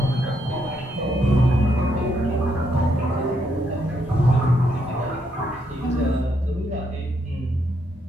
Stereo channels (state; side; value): normal; both; correlation 0.76